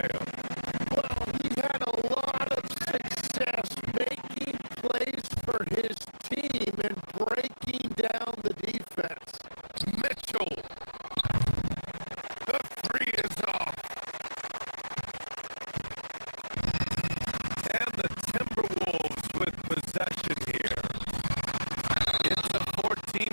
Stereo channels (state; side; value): inverted; both; correlation -1.00